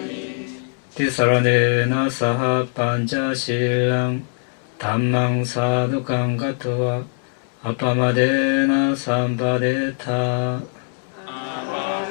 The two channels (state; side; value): silent; right; 65 dB below the other